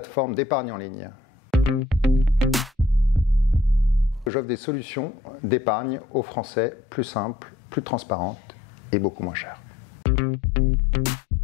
d'épargne en ligne. J'offre des solutions d'épargne aux Français plus simples, plus transparentes et beaucoup moins chères.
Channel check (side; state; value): right; drops out; at 4.3 s